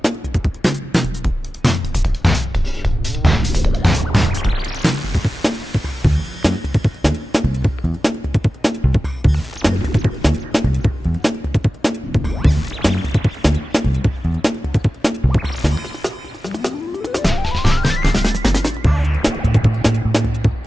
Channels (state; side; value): normal; both; correlation 0.94